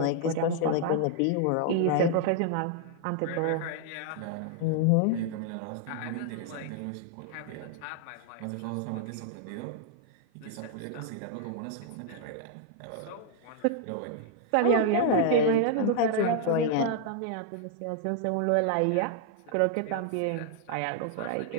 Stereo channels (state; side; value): different; both; correlation 0.00